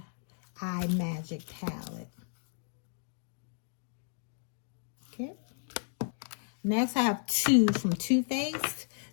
Eye Magic palette. Okay. Next, I have 2 from Too Faced.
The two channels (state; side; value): silent; right; digital silence